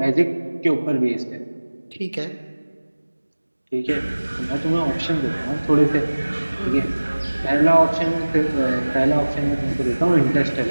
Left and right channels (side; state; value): both; inverted; correlation -1.00